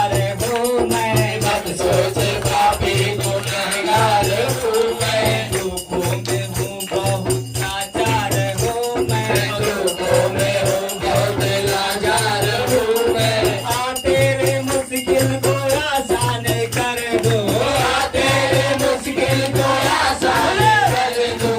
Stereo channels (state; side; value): identical; both; correlation 1.00